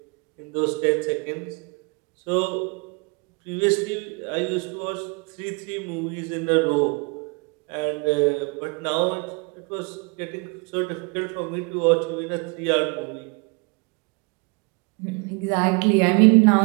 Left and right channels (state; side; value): quieter; left; 31.7 dB